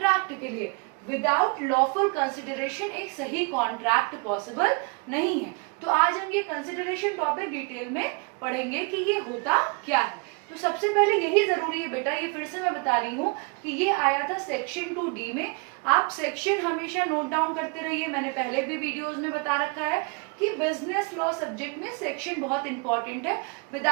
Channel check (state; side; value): quieter; left; 31.9 dB